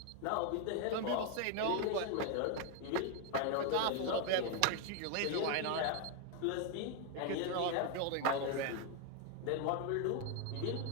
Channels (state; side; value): different; both; correlation 0.01